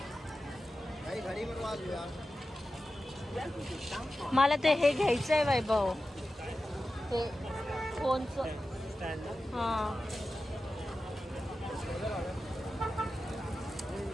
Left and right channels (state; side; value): normal; both; correlation 0.93